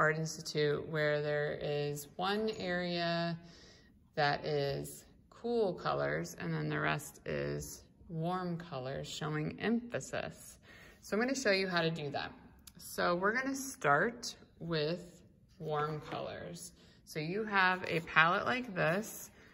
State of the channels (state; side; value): identical; both; correlation 1.00